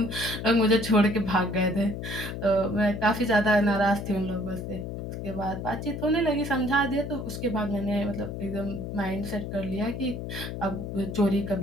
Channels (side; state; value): left; noise; hum, 6 dB below the sound